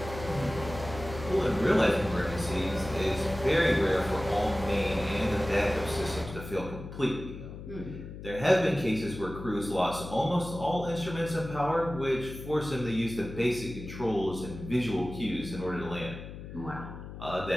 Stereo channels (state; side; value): noise; left; hum, 11 dB below the sound